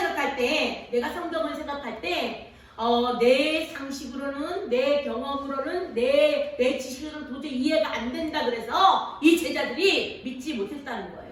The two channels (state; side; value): identical; both; correlation 1.00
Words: 때 내가 성경을 생각할 때 내 상식으로는 내 경험으로는 내 지식으로는 도저히 이해가 안 된다 그래서 이 제자들이 믿지 못했다는